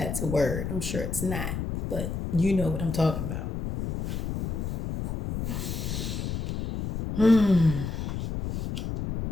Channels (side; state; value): left; noise; rumble, 4 dB below the sound